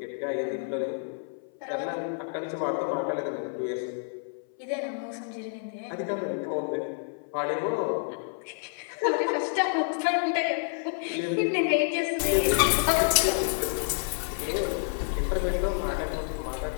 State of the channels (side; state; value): right; silent; 57 dB below the other